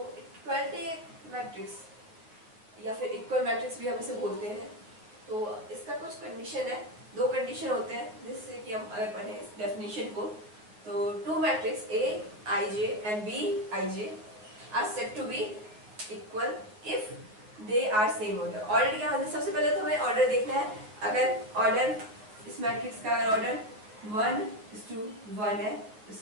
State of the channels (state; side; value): late; left; 9.3 ms